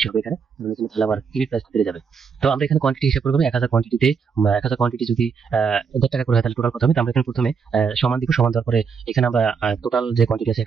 হবে এখানে, তাহলে আমার ইউনিট প্রাইস বেড়ে যাবে। তো আমরা এখানে কোয়ান্টিটি হিসাব করবো, 1000 কোয়ান্টিটিতে 1000 কোয়ান্টিটি যদি 1.5 টাকা করে হয়, তাহলে টোটাল কত হবে। তো আমরা এখানে প্রথমে সমান দিব, সমান দেওয়ার পরে এখানে আমরা টোটাল যে কোয়ান্টিটি আছে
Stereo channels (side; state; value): left; quieter; 6.0 dB